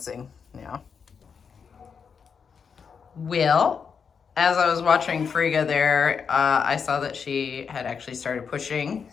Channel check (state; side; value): quieter; right; 6.2 dB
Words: now. Well, as I was watching Frigga there, I saw that she had actually started pushing,